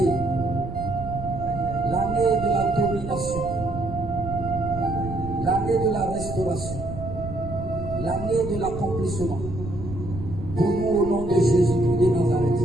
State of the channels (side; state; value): right; noise; rumble, 9 dB below the sound